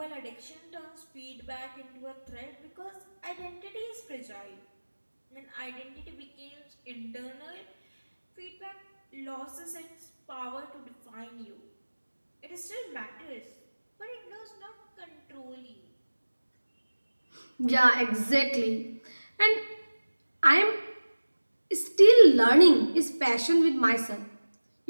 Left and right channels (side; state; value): both; inverted; correlation -1.00